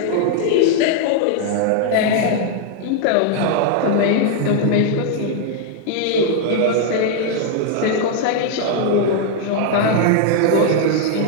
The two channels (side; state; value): both; different; correlation 0.00